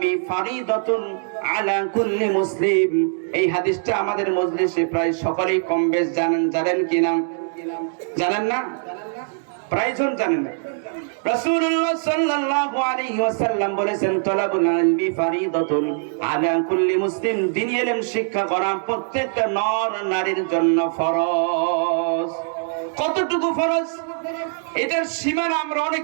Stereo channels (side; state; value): left; silent; digital silence